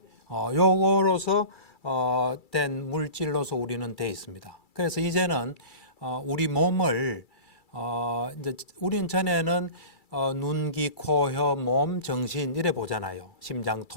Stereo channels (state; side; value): late; right; 2.3 ms